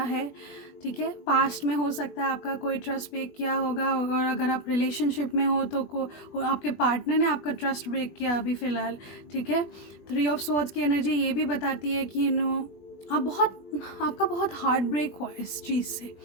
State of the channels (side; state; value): right; late; 20 ms